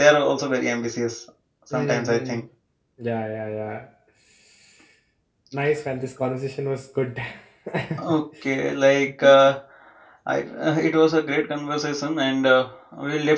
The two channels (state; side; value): identical; both; correlation 1.00